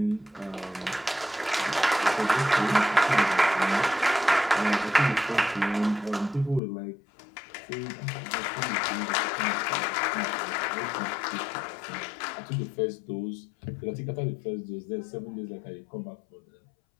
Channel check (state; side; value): drops out; right; at 6.6 s